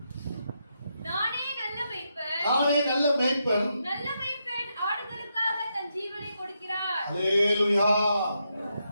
நானே நல்ல மேய்ப்பன், நானே நல்ல மேய்ப்பன், நல்ல மேய்ப்பன் ஆடுகளுக்காக தன் ஜீவனை கொடுக்கிறார். அல்லேலூயா.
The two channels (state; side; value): inverted; both; correlation -0.82